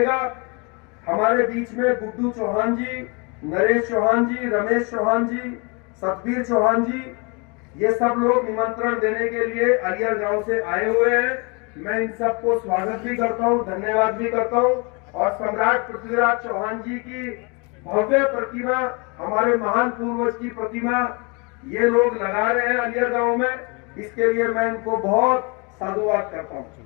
हमारे बीच में गुड्डू चौहान जी, नरेश चौहान जी, रमेश चौहान जी, सतबीर चौहान जी, ये सब लोग निमंत्रण देने के लिए आलियर गांव से आए हुए हैं। मैं इन सबको स्वागत भी करता हूं, धन्यवाद भी करता हूं। और सम्राट पृथ्वीराज चौहान जी की भव्य प्रतिमा, हमारे महान पूर्वज की प्रतिमा ये लोग लगा रहे हैं आलियर गांव में, इसके लिए मैं इनको बहुत साधुवाद करता हूं।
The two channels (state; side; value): quieter; right; 31.7 dB